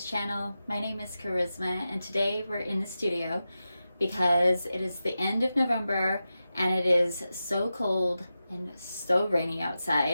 channel. My name is Charisma, and today we're in the studio because it is the end of November and it is so cold and so rainy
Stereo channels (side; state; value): both; inverted; correlation -0.92